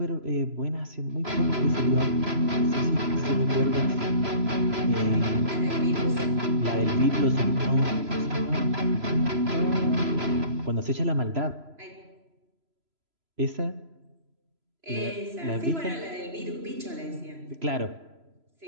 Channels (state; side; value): late; left; 3.0 ms